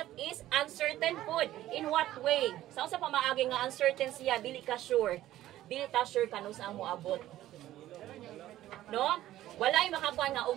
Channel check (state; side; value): quieter; left; 14.1 dB